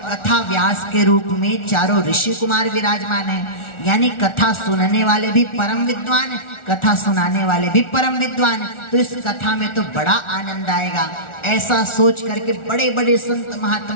व्यास के रूप में चारों ऋषि कुमार विराजमान हैं, यानी कथा सुनने वाले भी परम विद्वान, कथा सुनाने वाले भी परम विद्वान, तो इस कथा में तो बड़ा आनंद आएगा। ऐसा सोच करके बड़े बड़े संत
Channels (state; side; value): late; right; 1.4 ms